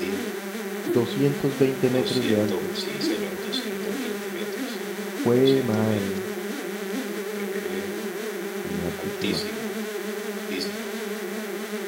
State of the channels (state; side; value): identical; both; correlation 1.00